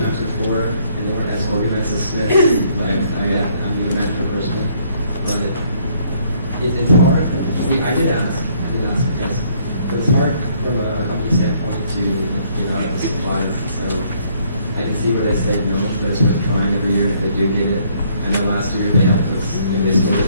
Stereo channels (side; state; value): both; inverted; correlation -0.66